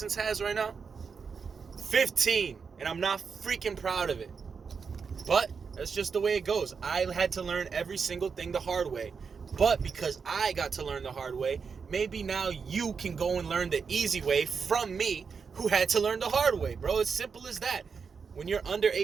has right now? 15. And I'm not freaking proud of it. But that's just the way it goes. I had to learn every single thing the hard way. But because I got to learn the hard way, maybe now you can go and learn the easy way from me, who had to learn the hard way, bro. It's simple as that. When you're under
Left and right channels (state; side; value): quieter; left; 5.7 dB